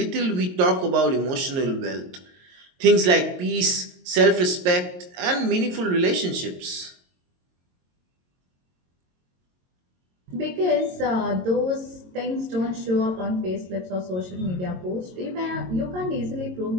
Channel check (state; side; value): late; left; 22 ms